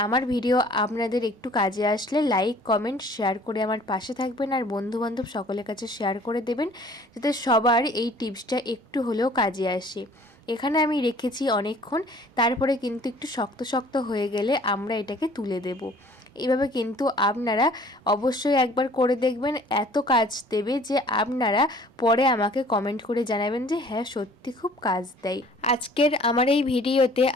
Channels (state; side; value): normal; both; correlation 0.53